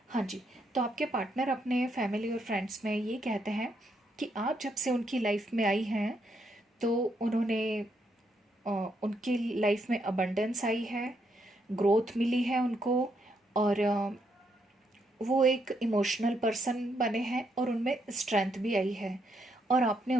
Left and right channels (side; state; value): both; normal; correlation 0.77